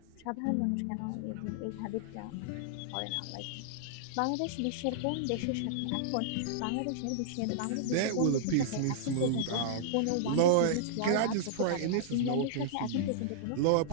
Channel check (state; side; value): different; both; correlation -0.02